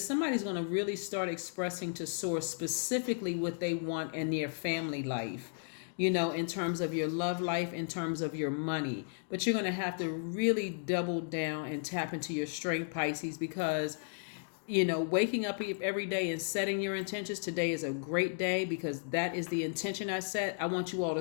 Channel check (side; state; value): right; silent; digital silence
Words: going to really start expressing to Source specifically what they want in their family life, in terms of your love life, in terms of your money. But you're going to have to really double down and tap into your strength, Pisces, because waking up every day and setting your intentions. Today is a great day because that is the intention I set. I want you all